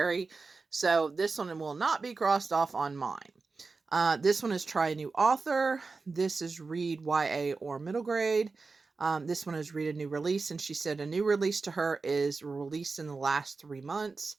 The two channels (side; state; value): left; quieter; 4.2 dB